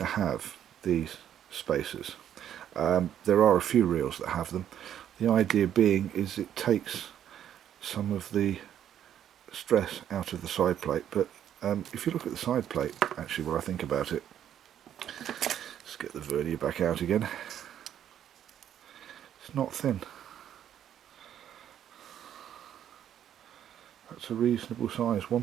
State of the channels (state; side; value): quieter; left; 10.2 dB